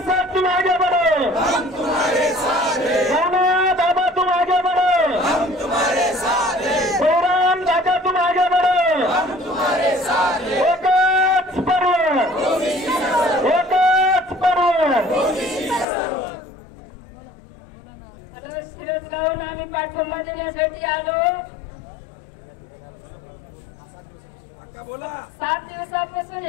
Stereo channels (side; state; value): right; drops out; at 15.9 s